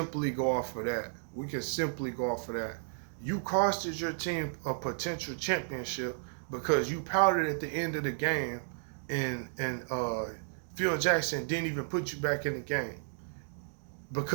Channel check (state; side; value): silent; left; digital silence